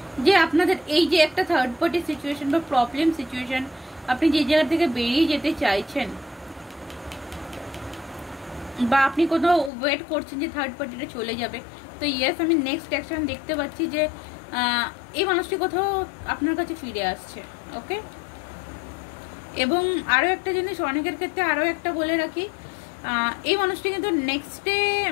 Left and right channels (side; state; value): right; drops out; at 9.7 s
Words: যে আপনাদের এই যে একটা থার্ড পার্টি সিচুয়েশন বা প্রবলেম সিচুয়েশন আপনি যে জায়গা থেকে বেরিয়ে যেতে চাইছেন, বা আপনি কোথাও ওয়েট করছেন যে থার্ড পার্টিটা চলে যাবে। তো ইয়েস, আমি নেক্সট অ্যাকশন দেখতে পাচ্ছি যে এই মানুষটি কোথাও আপনার কাছে ফিরে আসছে। ওকে, এবং আরও একটা জিনিস অনেকের ক্ষেত্রে আরও একটা বলে রাখি, এই মানুষটি কিন্তু নেক্সটে